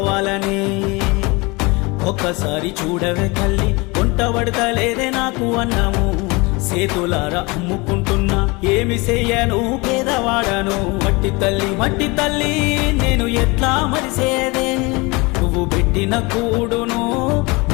ఒక్కసారి చూడవే తల్లి, వంట పడతలేదే నాకు అన్నము, సేతులారా అమ్ముకుంటున్నా ఏమి చెయ్యను పేదవాడను. మట్టి తల్లి నేను ఎట్లా మరిసేదే, నువ్వు పెట్టిన కూడును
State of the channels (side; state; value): right; quieter; 25.9 dB